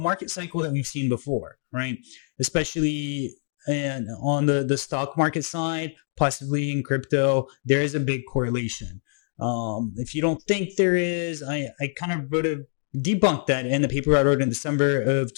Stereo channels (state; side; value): silent; right; digital silence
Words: cycle that we've seen before, right? Especially on the stock market side, possibly in crypto, there is a big correlation. If you don't think there is, I kind of debunked that in the paper I wrote in December of